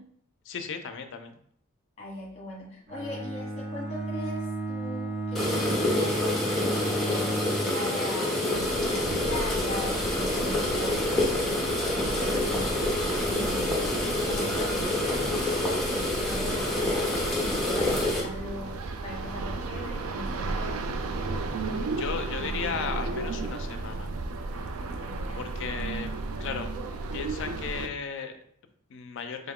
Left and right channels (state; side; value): normal; both; correlation 0.49